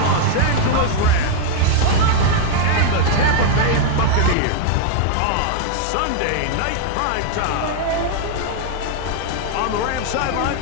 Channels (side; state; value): both; different; correlation 0.00